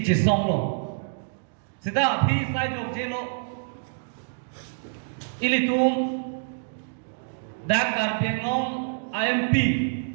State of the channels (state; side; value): silent; left; digital silence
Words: lo sida abhi sai jok jelo ilitum dak karpiengong IMP